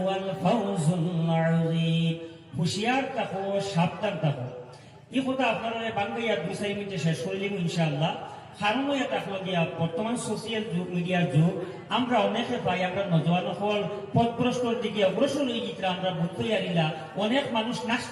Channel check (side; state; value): both; identical; correlation 1.00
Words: ফাওজুল আযীম। হুঁশিয়ার থাকো, সাবধান থাকো। এই কথা আপনারা বাংলাইয়া 2-4 মিনিটে শেষ করে দিব ইনশাআল্লাহ। কারণ এটা হলো গিয়া বর্তমান সোশিয়াল যুগ, মিডিয়ার যুগ। আমরা অনেকে পাই আমরা নজওয়ান হল পথভ্রষ্টর দিকে অগ্রসর হয়ে যেতে আমরা বুঝতে পারিলা। অনেক মানুষ